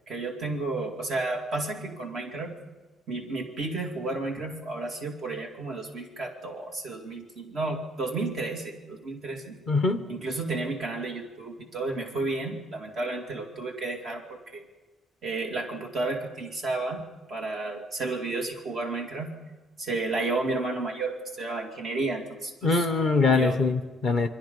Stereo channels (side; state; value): both; normal; correlation 0.60